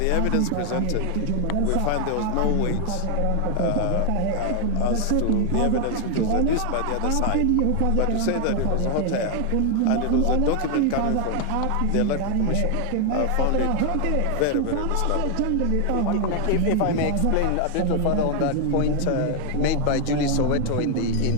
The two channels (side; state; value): both; different; correlation 0.01